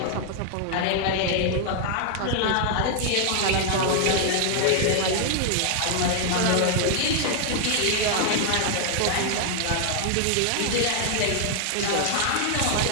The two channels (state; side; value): different; both; correlation 0.00